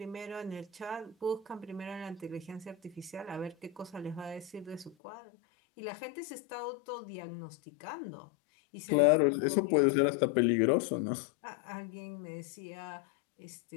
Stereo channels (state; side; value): drops out; right; at 5.0 s